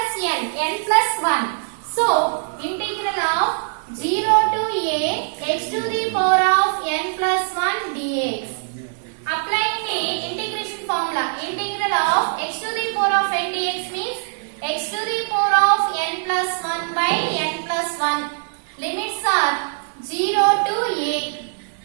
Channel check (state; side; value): silent; left; 60 dB below the other